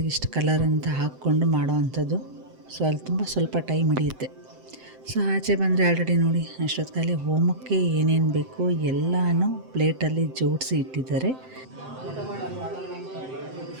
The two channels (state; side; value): late; left; 7.7 ms